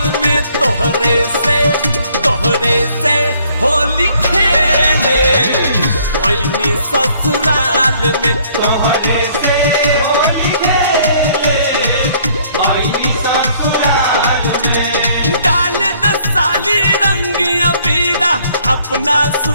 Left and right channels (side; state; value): both; inverted; correlation -0.62